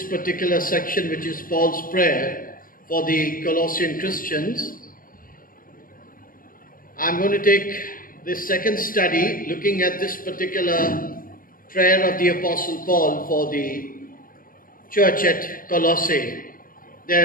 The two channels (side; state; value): right; late; 0.41 ms